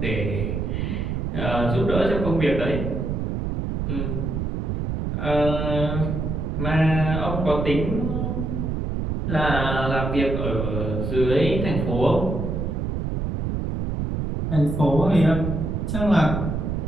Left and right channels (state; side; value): noise; right; rumble, 2 dB below the sound